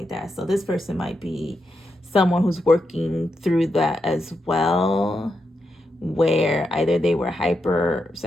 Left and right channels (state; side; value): normal; both; correlation 0.85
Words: that. So this person might be someone who's working through that as well, where either they were